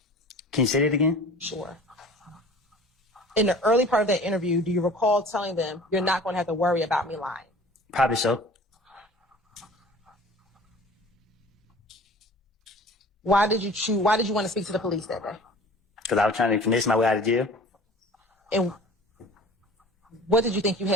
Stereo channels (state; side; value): normal; both; correlation 0.44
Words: Can you say that again? Sure. In the early part of that interview, do you recall telling them you're not going to have to worry about me lying? Probably so. Why did you want to speak to the police that day? Because I was trying to finesse my way out of jail. And what did you think you